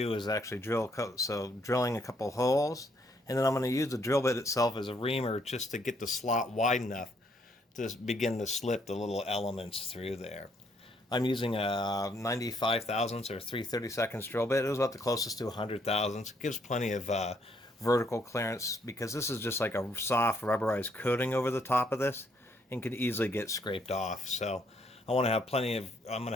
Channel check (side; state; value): both; normal; correlation 0.70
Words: is actually drilling a couple holes, and then I'm going to use the drill bit itself as a reamer just to get the slot wide enough to begin to slip the little elements through there. I'm using a 95 thousandths or 3/32 drill bit. It was about the closest to 100 thousandths. It gives plenty of vertical clearance because this is just like a soft rubberized coating over the top of this and can easily get scraped off. So I want to have plenty of,